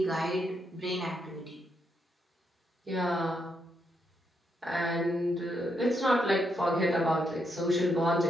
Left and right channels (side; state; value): both; normal; correlation 0.79